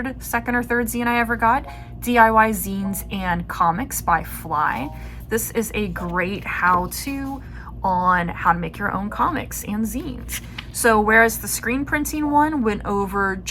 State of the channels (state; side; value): identical; both; correlation 1.00